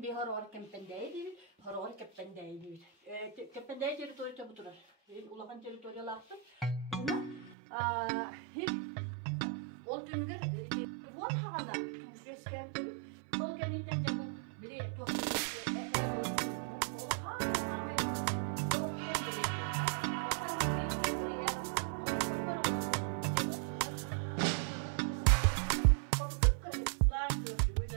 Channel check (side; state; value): left; drops out; at 7.6 s